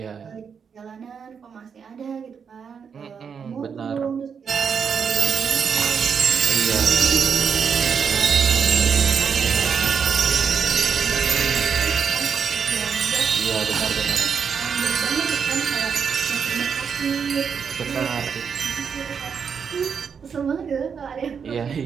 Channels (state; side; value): quieter; left; 6.6 dB